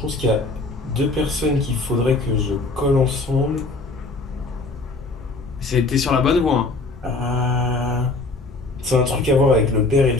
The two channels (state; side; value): quieter; right; 3.4 dB